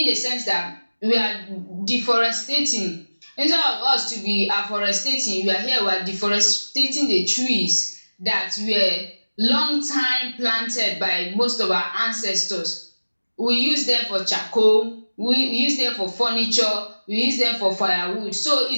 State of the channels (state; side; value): inverted; both; correlation -1.00